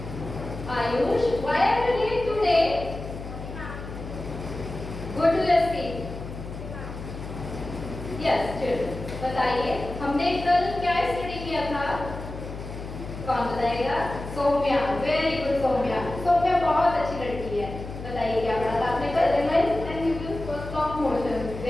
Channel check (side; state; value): left; noise; hum, 10 dB below the sound